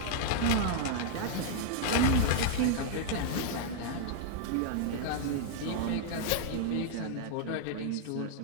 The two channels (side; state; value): both; different; correlation -0.01